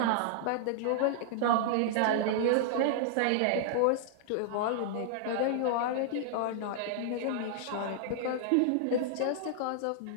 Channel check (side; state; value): both; different; correlation -0.01